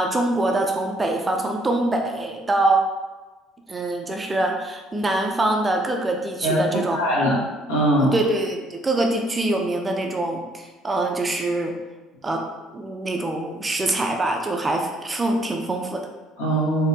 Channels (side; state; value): both; normal; correlation 0.66